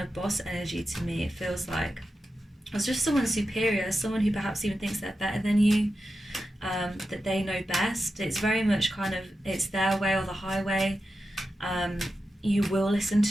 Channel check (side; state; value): both; normal; correlation 0.90